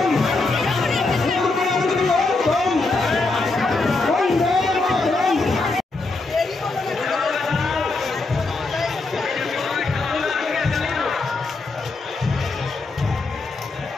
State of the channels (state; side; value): quieter; right; 3.5 dB